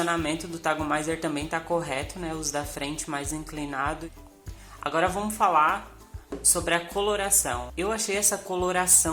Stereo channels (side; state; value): both; identical; correlation 1.00